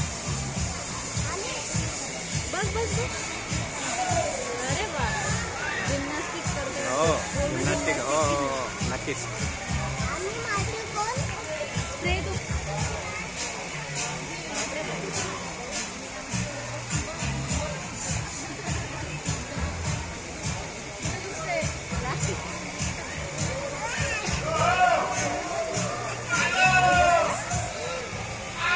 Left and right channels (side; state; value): both; identical; correlation 1.00